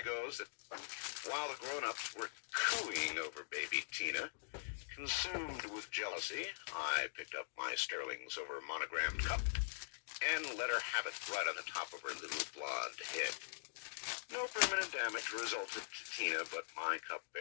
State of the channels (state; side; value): silent; right; digital silence